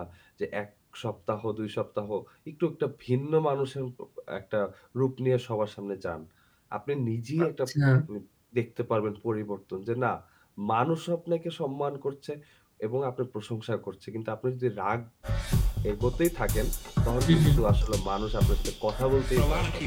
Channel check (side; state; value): both; identical; correlation 1.00